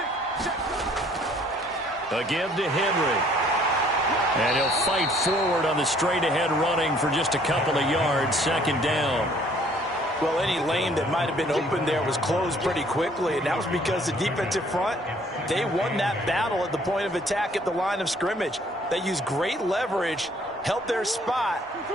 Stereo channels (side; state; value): both; normal; correlation 0.59